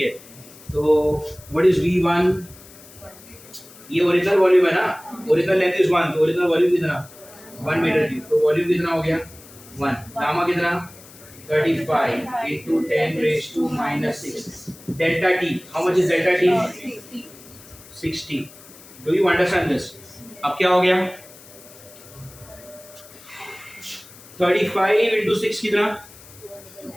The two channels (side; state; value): left; noise; hiss, 21 dB below the sound